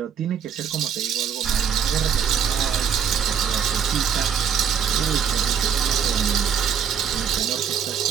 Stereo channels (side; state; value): left; quieter; 7.8 dB